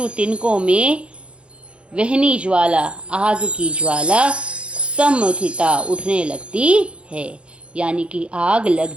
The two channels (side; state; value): left; late; 0.058 ms